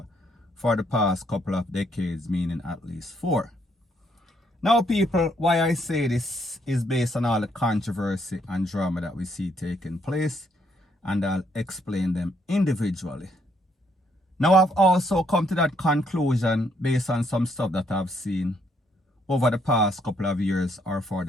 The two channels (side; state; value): both; normal; correlation 0.71